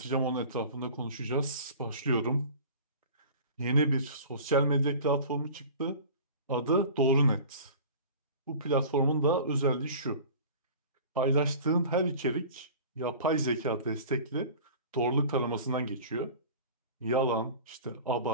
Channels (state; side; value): inverted; both; correlation -0.40